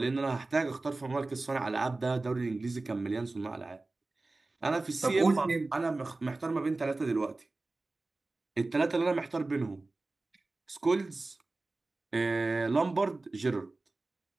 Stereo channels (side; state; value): left; quieter; 3.2 dB